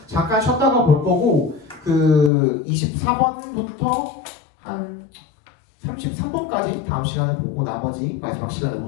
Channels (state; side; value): drops out; right; at 2.3 s